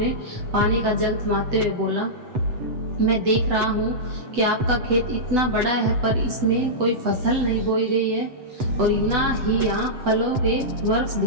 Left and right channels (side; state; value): left; late; 8.0 ms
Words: पानी का जग थमाते हुए बोला, मैं देख रहा हूँ कि आपका खेत इतना बड़ा है, पर इसमें कोई फसल नहीं बोई गई है और ना ही यहाँ फलों के वृक्ष